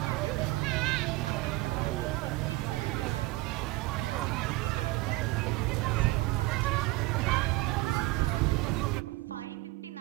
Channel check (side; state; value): left; quieter; 20.5 dB